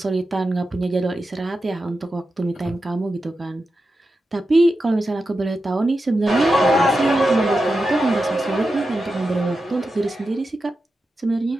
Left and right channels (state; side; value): normal; both; correlation 0.90